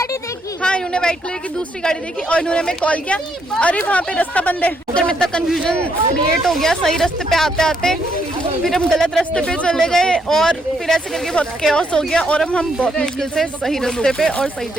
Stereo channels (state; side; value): normal; both; correlation 0.74